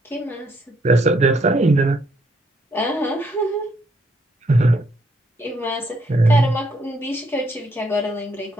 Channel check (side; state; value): both; normal; correlation 0.71